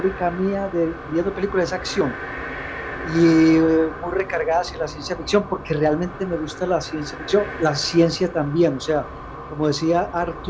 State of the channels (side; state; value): both; identical; correlation 1.00